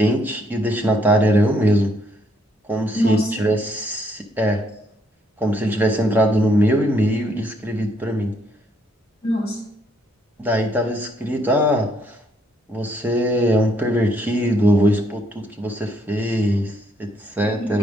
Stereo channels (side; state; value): both; normal; correlation 0.71